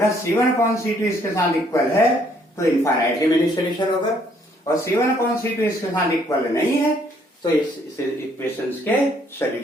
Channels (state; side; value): normal; both; correlation 0.66